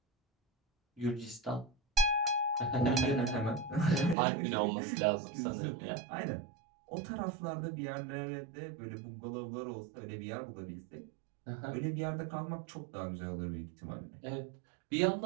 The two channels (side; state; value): left; drops out; at 4.2 s